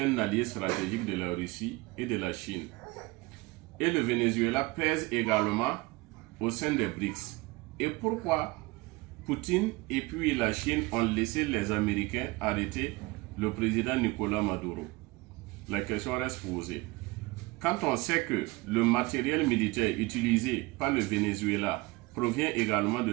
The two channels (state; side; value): quieter; left; 22.8 dB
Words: allié stratégique de la Russie et de la Chine. Et le Venezuela pèse également au sein des BRICS. Et pourquoi Poutine et puis la Chine ont laissé les Américains arrêter le président Nicolás Maduro? La question reste posée. Quand on sait que le matériel militaire utilisé par le Venezuela provient également